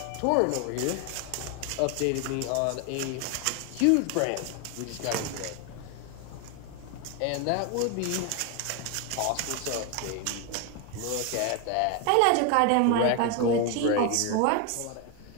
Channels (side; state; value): both; different; correlation 0.01